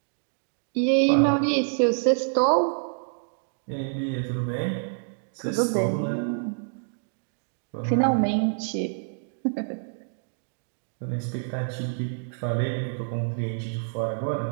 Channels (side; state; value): left; silent; digital silence